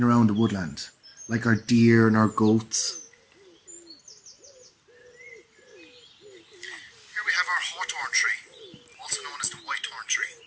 around the woodland, like our deer and our goats. Here we have our hawthorn tree, also known as the whitethorn tree.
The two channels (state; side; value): identical; both; correlation 1.00